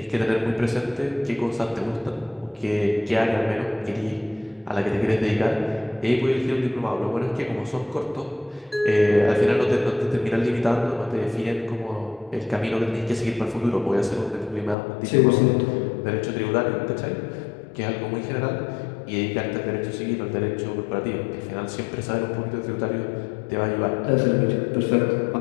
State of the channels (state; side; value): drops out; right; at 14.8 s